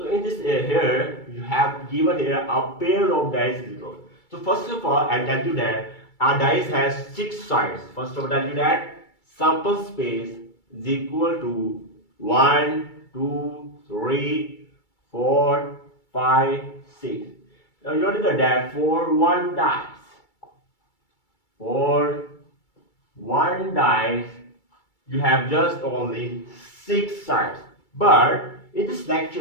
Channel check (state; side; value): late; right; 2.3 ms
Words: in this here you have given here a pair of dice is rolled. So first of all I'll tell you that a dice has 6 sides. First of all I'll tell you that sample space is equal to 1, 2, 3, 4, 5, 6. Now you notice that for one dice, you have just only 6 sides. But in this